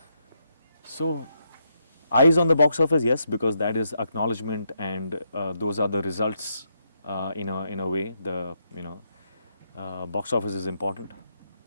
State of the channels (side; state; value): both; inverted; correlation -0.79